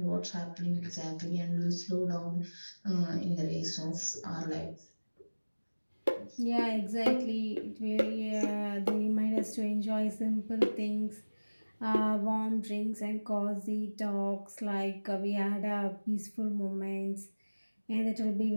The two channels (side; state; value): both; inverted; correlation -1.00